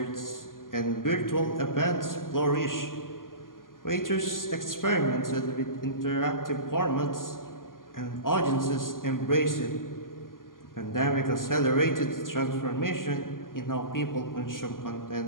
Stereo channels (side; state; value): right; late; 0.91 ms